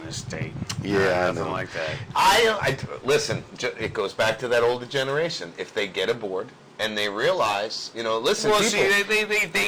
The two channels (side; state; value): both; identical; correlation 1.00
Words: this state. Yeah, I nothing know. like that. Listen, it goes back to that older generation. If they get aboard and they realize, listen, Well, people, see, they